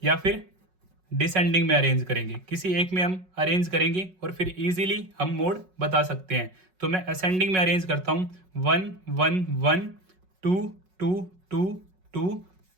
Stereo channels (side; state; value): left; late; 5.4 ms